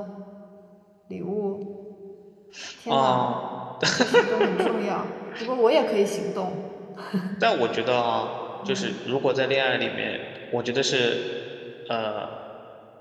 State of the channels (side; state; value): both; identical; correlation 1.00